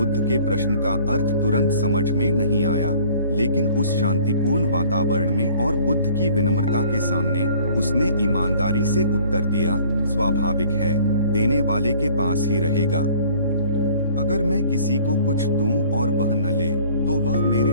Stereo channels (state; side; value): inverted; both; correlation -0.53